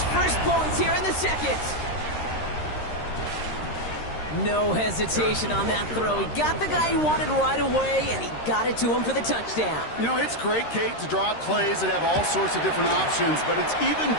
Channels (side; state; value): right; late; 13 ms